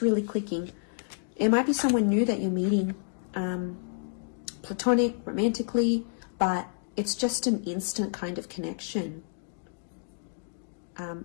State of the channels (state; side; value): silent; right; 57 dB below the other